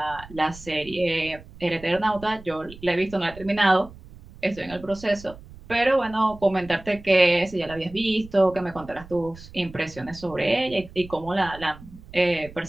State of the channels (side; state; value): right; noise; rumble, 18 dB below the sound